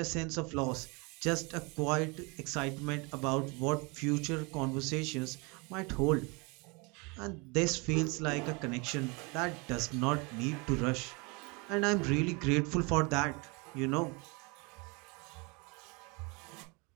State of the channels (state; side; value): quieter; left; 29.1 dB